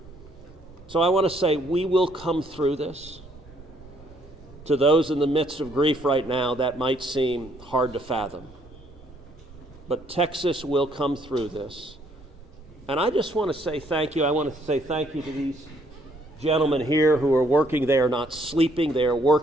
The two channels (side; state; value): both; normal; correlation 0.67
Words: So I want to say we will come through this. To those in the midst of grief right now, that might seem hard to fathom. But Texas will come through this. And I just want to say thank you. I want to say thank you to these gentlemen here who are working. They are not sleeping. They are